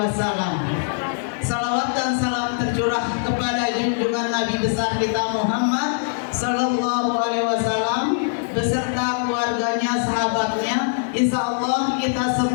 Salawat dan salam tercurah kepada junjungan Nabi besar kita Muhammad Sallallahu Alaihi Wasallam beserta keluarganya, sahabatnya. Insya Allah kita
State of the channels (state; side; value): silent; right; digital silence